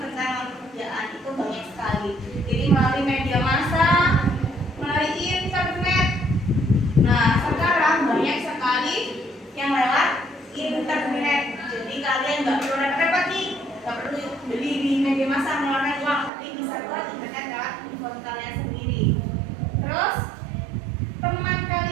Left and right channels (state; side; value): drops out; left; at 16.3 s